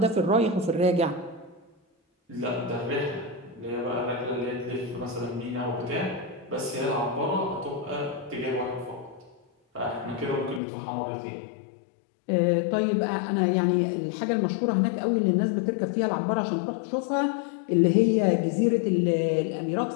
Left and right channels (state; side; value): drops out; right; at 10.6 s